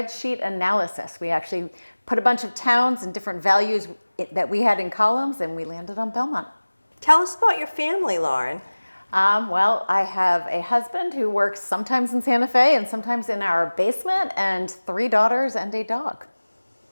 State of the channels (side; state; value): both; inverted; correlation -1.00